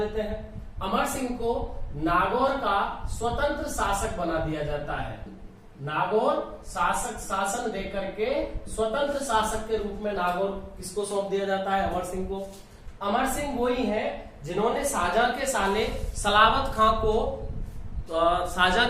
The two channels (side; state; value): both; identical; correlation 1.00